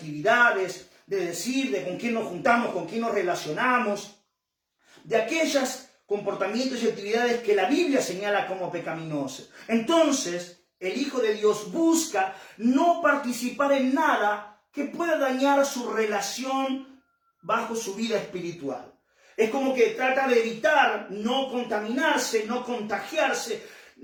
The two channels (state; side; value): identical; both; correlation 1.00